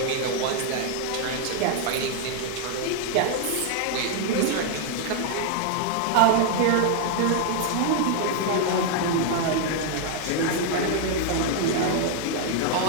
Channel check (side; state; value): both; different; correlation 0.00